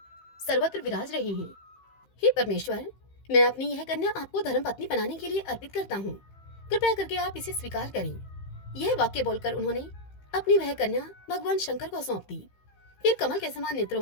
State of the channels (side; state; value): right; late; 15 ms